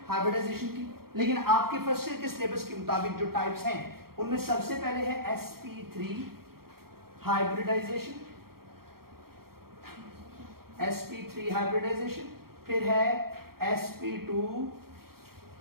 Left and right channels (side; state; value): left; late; 0.94 ms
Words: हाइब्रिडाइजेशन की, लेकिन आपके फर्स्ट ईयर के सिलेबस के मुताबिक जो टाइप्स हैं, उनमें सबसे पहले है sp3 हाइब्रिडाइजेशन, sp3 हाइब्रिडाइजेशन, फिर है sp2